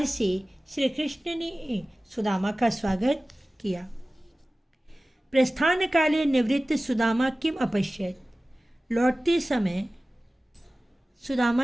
से श्री कृष्ण ने सुदामा का स्वागत किया। प्रस्थान काले निवृत्त सुदामा किम अपश्यत। लौटते समय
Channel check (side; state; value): both; normal; correlation 0.97